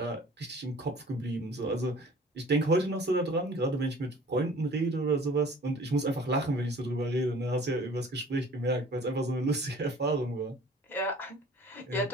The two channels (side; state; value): both; normal; correlation 0.48